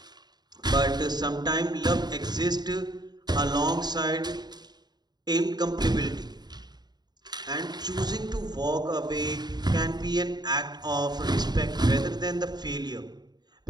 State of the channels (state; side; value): late; left; 0.20 ms